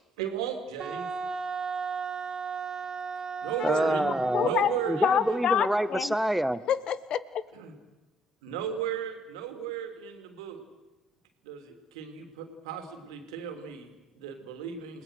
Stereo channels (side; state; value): both; normal; correlation 0.65